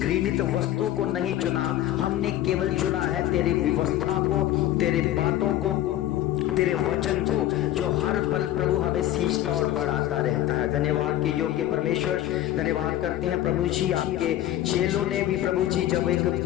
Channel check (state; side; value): quieter; right; 13.5 dB